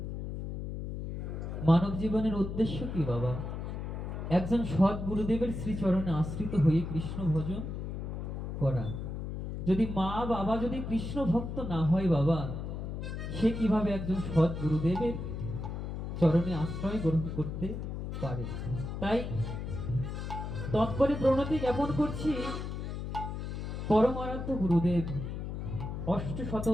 মানব জীবনের উদ্দেশ্য কি বাবা? একজন সদ্গুরুদেবের শ্রীচরণে আশ্রিত হয়ে কৃষ্ণ ভজন করা। যদি মা বাবা যদি কৃষ্ণ ভক্ত না হয় বাবা, সে কিভাবে একজন সদ্গুরুদেবের চরণে আশ্রয় গ্রহণ করতে পারে? তাই তৎপরে প্রণতি জ্ঞাপন করছি পরমারাধ্য গুরুদেব অষ্টশত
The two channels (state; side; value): noise; left; hum, 5 dB below the sound